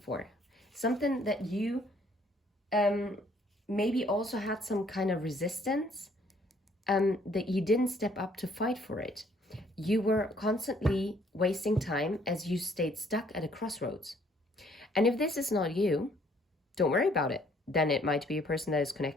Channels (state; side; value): normal; both; correlation 0.63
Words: for. Something that you maybe also had some kind of resistance, that you didn't step up to fight for it. You were constantly wasting time as you stayed stuck at a crossroads. And if this is not you, don't worry about it. Then it might be a person that is